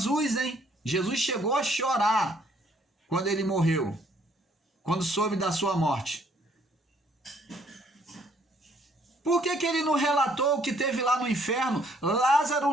hein? Jesus chegou a chorar quando ele morreu, quando soube da sua morte. Por que ele não relatou o que teve lá no inferno?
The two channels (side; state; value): both; normal; correlation 0.64